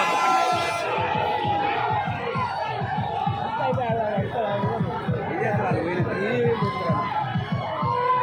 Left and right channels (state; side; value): identical; both; correlation 1.00